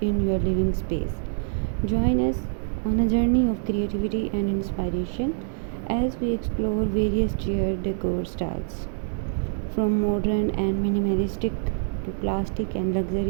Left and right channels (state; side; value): silent; left; digital silence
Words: your living space. Join us on a journey of creativity and inspiration as we explore various chair decor styles, from modern and minimalistic to classic and